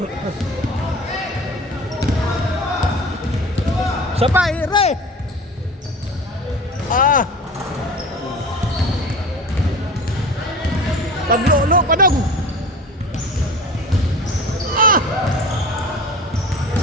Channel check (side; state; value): both; normal; correlation 0.37